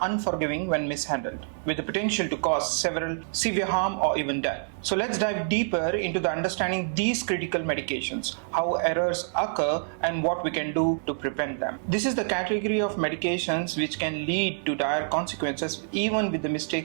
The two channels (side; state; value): left; silent; digital silence